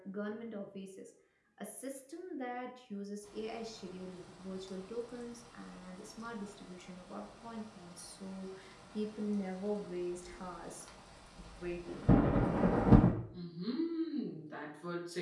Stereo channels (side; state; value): both; identical; correlation 1.00